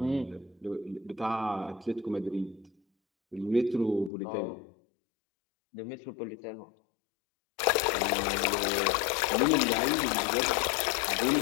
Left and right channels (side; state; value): right; drops out; at 4.1 s